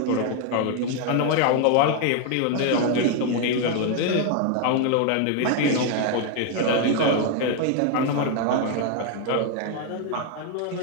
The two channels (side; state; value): both; different; correlation 0.01